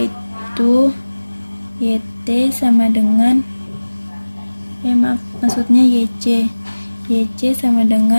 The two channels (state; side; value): inverted; both; correlation -1.00